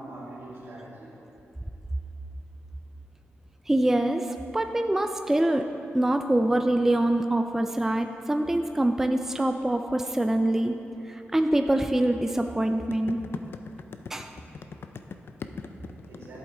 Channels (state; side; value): normal; both; correlation 0.96